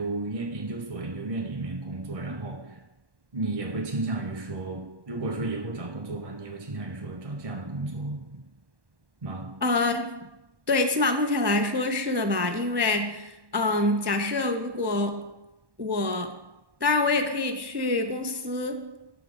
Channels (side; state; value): left; late; 1.1 ms